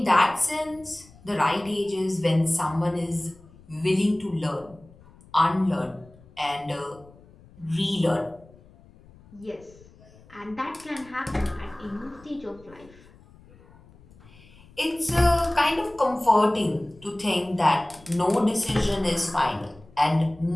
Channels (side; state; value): left; noise; rumble, 25 dB below the sound